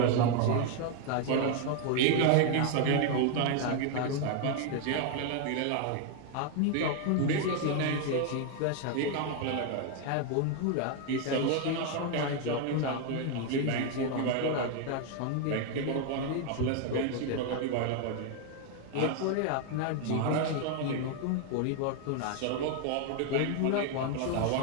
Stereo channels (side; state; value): both; different; correlation 0.01